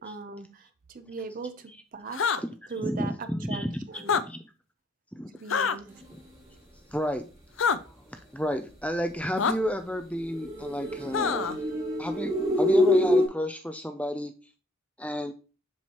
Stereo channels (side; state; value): both; normal; correlation 0.63